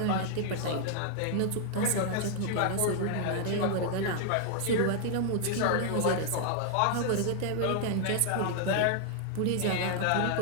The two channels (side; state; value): both; different; correlation 0.00